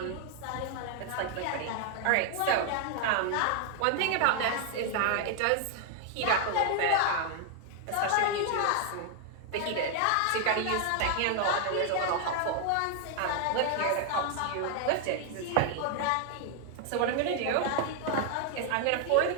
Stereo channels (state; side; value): different; both; correlation 0.00